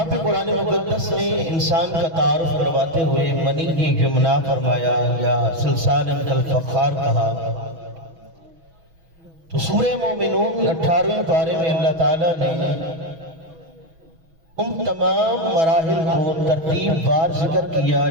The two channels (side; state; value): left; late; 6.1 ms